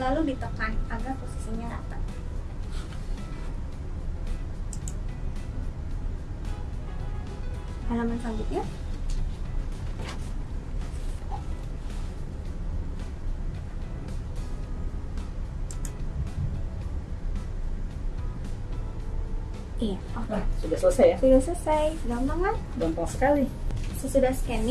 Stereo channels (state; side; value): identical; both; correlation 1.00